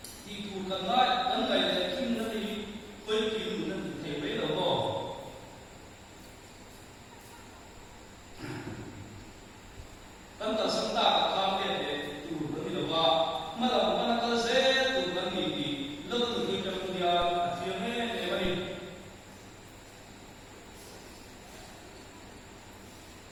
thì phù cần na cần ngày để kim nó đi với kim nó thầy mấy đầu bò cần cầu sân ta cần tham để phù nó đi đầu bò mà đầu mà nó có dễ từ cần gì thì lúc từ khi trong dia phía mấy để mà đi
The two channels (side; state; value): both; identical; correlation 1.00